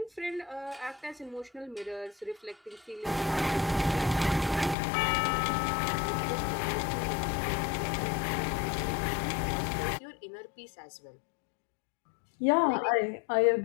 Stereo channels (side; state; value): right; drops out; at 4.8 s